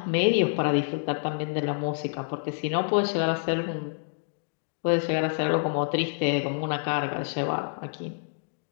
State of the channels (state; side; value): silent; right; digital silence